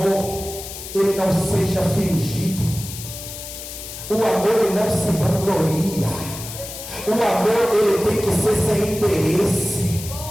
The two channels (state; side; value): noise; left; hiss, 11 dB below the sound